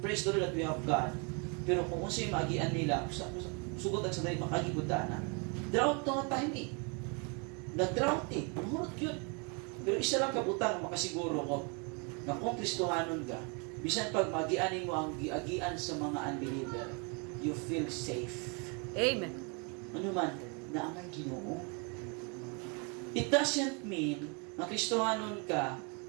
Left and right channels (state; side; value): quieter; left; 34.4 dB